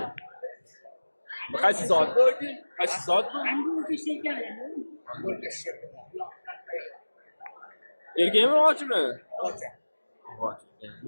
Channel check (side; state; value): both; inverted; correlation -1.00